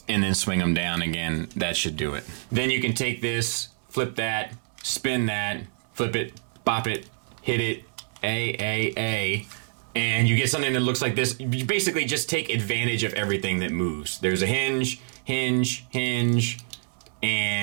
and then swing them down again, that should do it. Then you can take this, flip that, spin that, flip it, bop it, hit it, and you get something that looks like this. You basically just take advantage of everything that moves. There's a hinge, hinge, hinge,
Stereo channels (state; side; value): silent; left; digital silence